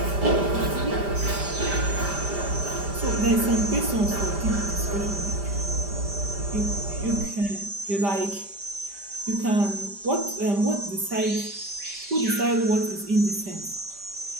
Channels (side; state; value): left; late; 5.0 ms